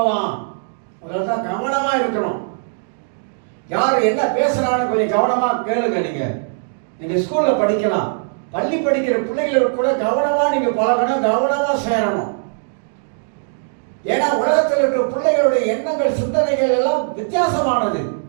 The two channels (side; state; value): left; silent; digital silence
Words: அதனால்தான் கவனமா இருக்கணும். யார் என்ன பேசுறான்னு கொஞ்சம் கவனமா கேளுங்க. நீங்க ஸ்கூல்ல படிக்கலாம், பள்ளி படிக்கிற பிள்ளைகளுக்கு கூட கவனமா நீங்க பழகணும், கவனமா சேரணும். ஏன்னா உலகத்தில் இருக்கிற பிள்ளைகளுடைய எண்ணங்கள், சிந்தனைகள் எல்லாம் வித்தியாசமானது,